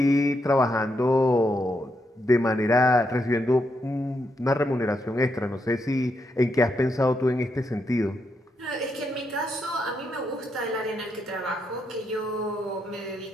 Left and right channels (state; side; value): normal; both; correlation 0.80